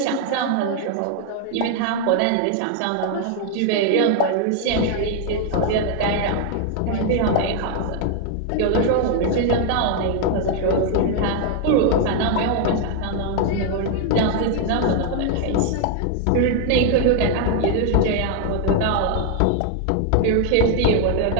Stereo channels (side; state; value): both; different; correlation 0.00